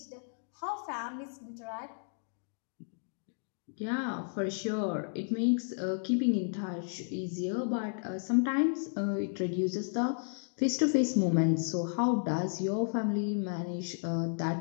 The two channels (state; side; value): silent; right; digital silence